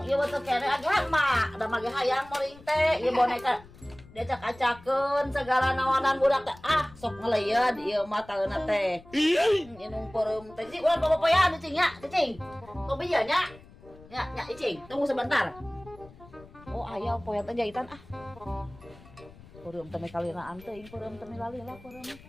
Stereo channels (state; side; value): noise; left; rumble, 22 dB below the sound